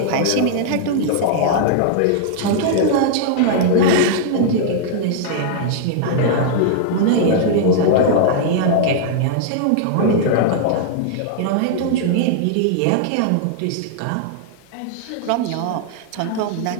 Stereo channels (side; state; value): both; different; correlation -0.01